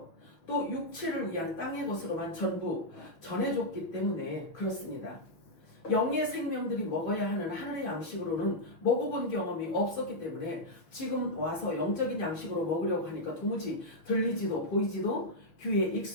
또 육체를 위한 땅의 것으로만 전부 전해줬기 때문에 그렇습니다. 영의 생명들이 먹어야 하는 하늘의 양식으로는 먹어본 경험이 없었기 때문에 지금 와서 영적인 양식으로 먹으려고 하니까 도무지 들리지도 보이지도 귀에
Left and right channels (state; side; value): late; right; 6.1 ms